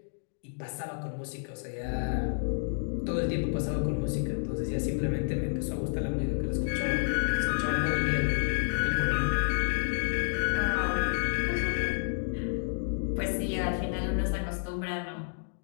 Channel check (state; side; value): silent; right; digital silence